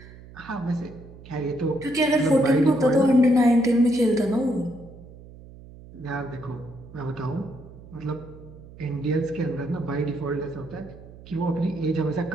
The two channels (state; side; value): noise; right; hum, 19 dB below the sound